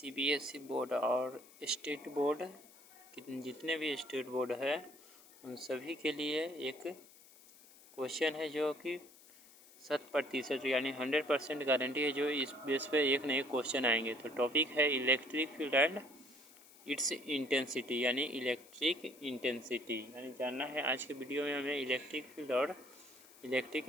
board और state board जितने भी स्टेट बोर्ड है उन सभी के लिए एक क्वेश्चन है जो कि 100% यानी 100% गारंटी है जो इस बेस पे एक नए क्वेश्चन आएंगे। तो टॉपिक है electric field and it's intensity यानी इलेक्ट्रिक इंटेंसिटी यानी जानना है आज के वीडियो में हमें इलेक्ट्रिक फील्ड और इलेक्ट्रिक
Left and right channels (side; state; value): left; noise; hiss, 23 dB below the sound